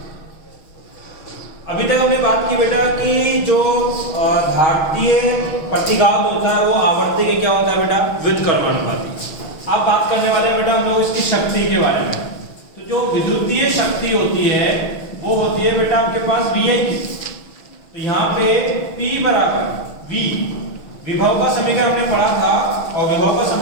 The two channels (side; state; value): right; late; 6.3 ms